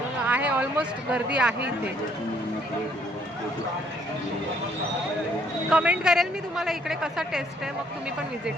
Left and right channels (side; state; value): both; normal; correlation 0.65